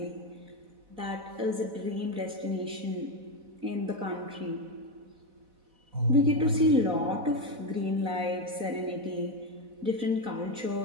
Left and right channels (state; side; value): late; left; 4.1 ms